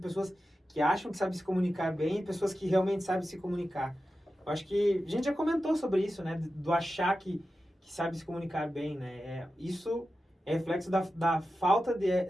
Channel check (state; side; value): normal; both; correlation 0.92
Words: que acham que sabem se comunicar bem e pessoas que realmente sabem se comunicar? Eu acho que a gente já comentou sobre isso, né? Do achar que sabe se comunicar bem, né? Isso é reflexo da falta